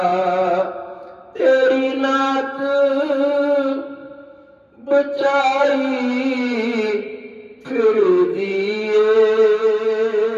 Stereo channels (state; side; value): identical; both; correlation 1.00